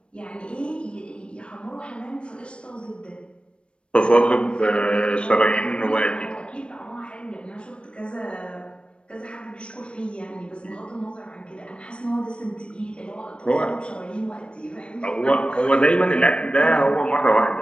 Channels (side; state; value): right; late; 0.057 ms